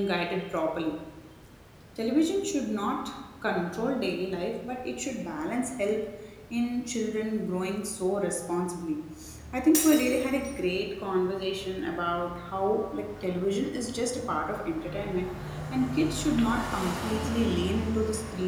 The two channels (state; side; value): identical; both; correlation 1.00